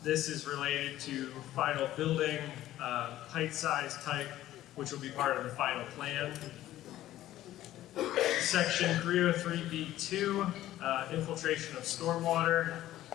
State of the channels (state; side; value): quieter; right; 14.0 dB